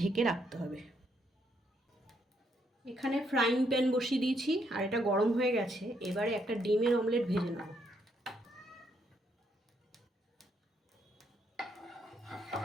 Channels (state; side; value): normal; both; correlation 0.74